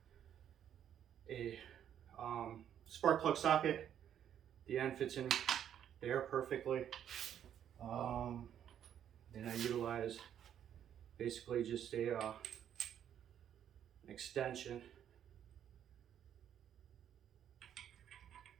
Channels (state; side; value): quieter; left; 9.7 dB